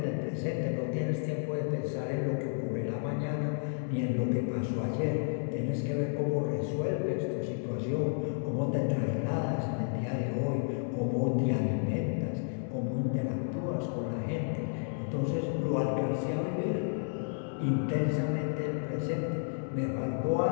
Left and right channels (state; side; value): silent; right; digital silence